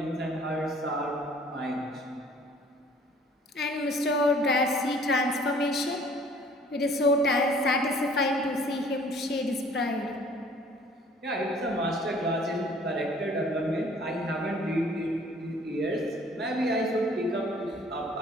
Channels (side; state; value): both; normal; correlation 0.54